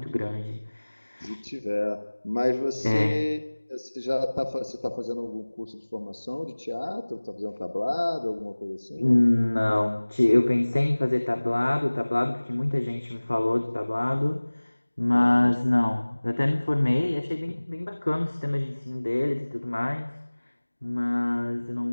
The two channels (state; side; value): inverted; both; correlation -1.00